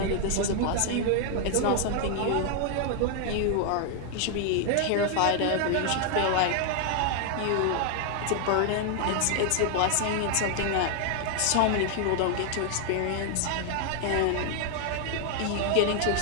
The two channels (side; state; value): both; different; correlation 0.00